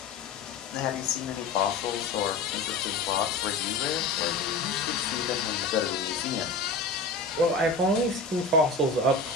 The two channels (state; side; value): quieter; right; 3.7 dB